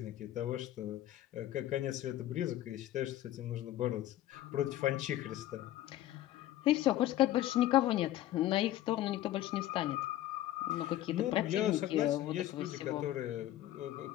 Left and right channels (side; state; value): right; quieter; 13.9 dB